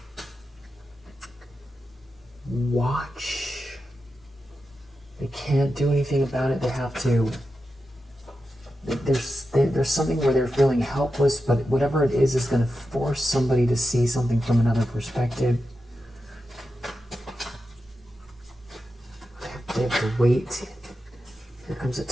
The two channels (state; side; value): normal; both; correlation 0.90